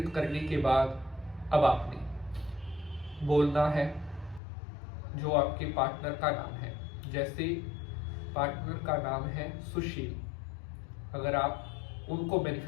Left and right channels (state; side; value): drops out; right; at 4.4 s